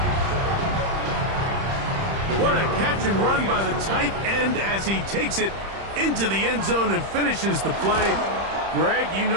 What a catch and run by the tight end as he takes it into the end zone and finishes the play. Greg, you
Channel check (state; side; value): late; left; 31 ms